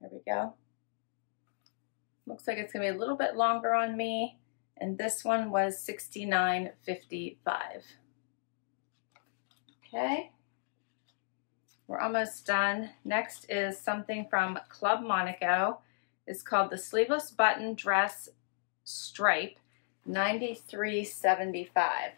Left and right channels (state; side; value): silent; right; digital silence